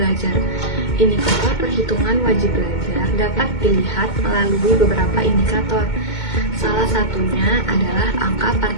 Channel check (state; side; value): late; right; 2.2 ms